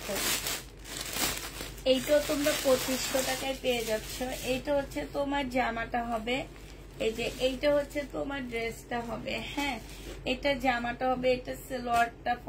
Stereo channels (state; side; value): identical; both; correlation 1.00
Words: এইটাও তোমরা 2500 টাকায় পেয়ে যাচ্ছ। এইটা হচ্ছে তোমার জামাটা হবে, এই যে এইটা হচ্ছে তোমার ড্রেসটা হবে। হ্যাঁ, এটা জামাটা হবে, এটা সালোয়ারটা